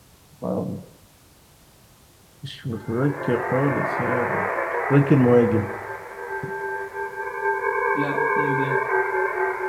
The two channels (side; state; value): both; identical; correlation 1.00